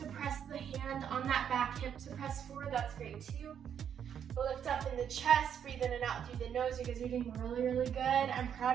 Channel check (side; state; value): left; quieter; 8.5 dB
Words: press the hand on that back hip to press forward, that's great too. Lift up in the chest, breathe in and out through the nose. You guys are doing really, really good. I'm